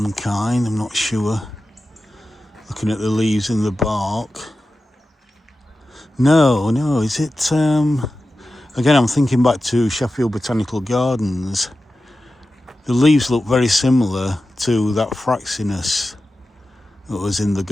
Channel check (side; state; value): both; normal; correlation 0.93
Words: kind, I'm not sure. Looking at the leaves and the bark. No, is it... Again, I'm thinking back to Sheffield Botanical Gardens. The leaves look very similar to that Fraxinus that was in the